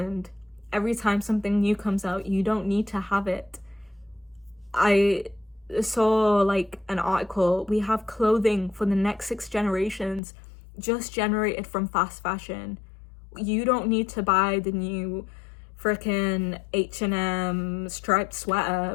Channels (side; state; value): right; drops out; at 10.2 s